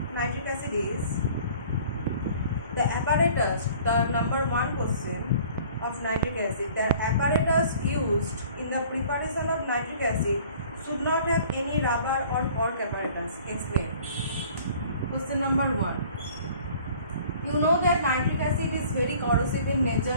nitric acid is the apparatus, the number one question of nitric acid, the apparatus used in the preparation of nitric acid should not have any rubber or cork apparatus. Explain. Question number one. You know that nitric acid is very corrosive in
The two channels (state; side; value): inverted; both; correlation -0.51